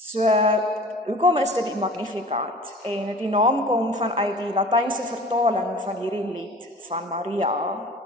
hoekom is dit die Magnificat? En die naam kom vanuit die Latynse vertaling van hierdie lied van Maria.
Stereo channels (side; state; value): both; normal; correlation 0.44